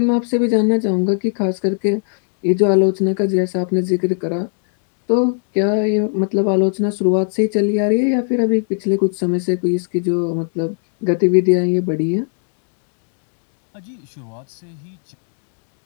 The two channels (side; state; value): right; silent; digital silence